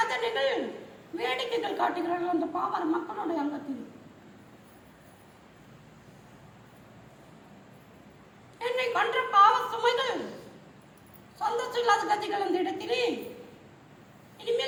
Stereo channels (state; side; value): identical; both; correlation 1.00